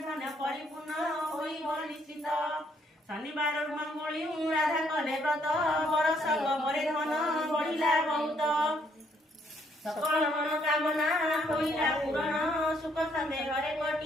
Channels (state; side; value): normal; both; correlation 0.69